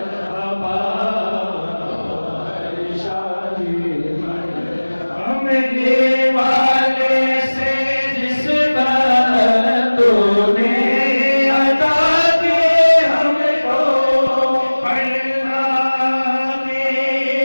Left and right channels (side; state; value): both; inverted; correlation -1.00